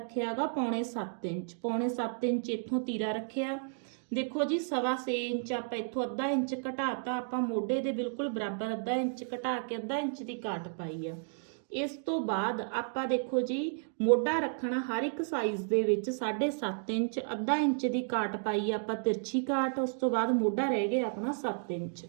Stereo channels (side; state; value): left; silent; digital silence